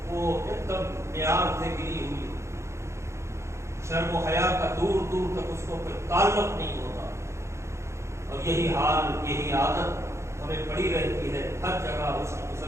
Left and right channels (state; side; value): late; left; 0.13 ms